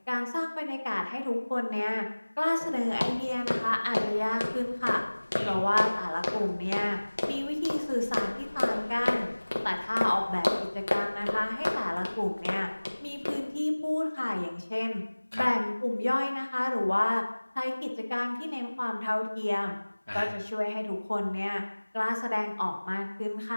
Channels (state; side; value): inverted; both; correlation -1.00